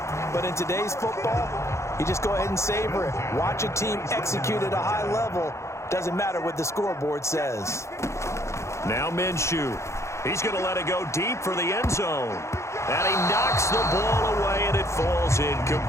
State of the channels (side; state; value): right; late; 0.14 ms